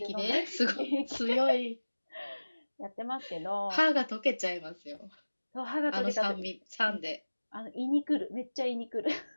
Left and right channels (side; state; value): both; inverted; correlation -1.00